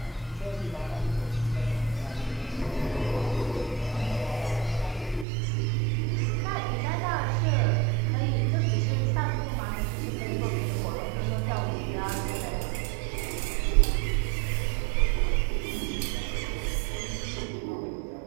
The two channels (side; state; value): left; drops out; at 5.2 s